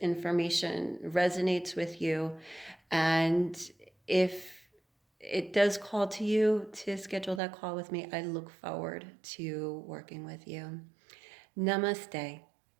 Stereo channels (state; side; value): drops out; left; at 7.4 s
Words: resonates with you. And if it does call to you to schedule that call with me, I look forward to working with you. Namaste.